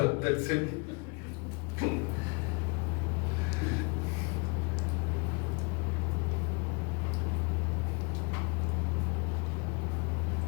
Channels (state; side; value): quieter; right; 31.2 dB